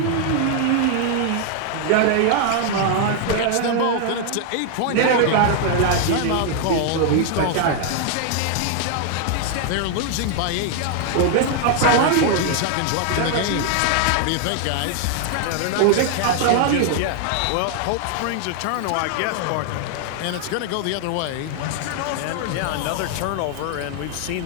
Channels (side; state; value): both; different; correlation 0.00